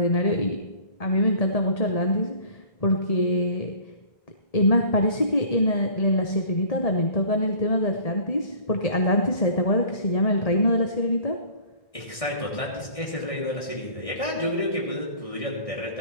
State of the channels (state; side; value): late; right; 1.6 ms